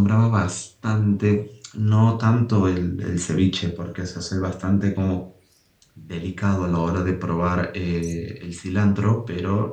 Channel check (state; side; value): identical; both; correlation 1.00